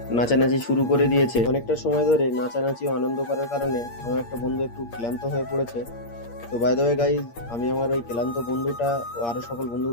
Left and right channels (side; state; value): right; late; 8.6 ms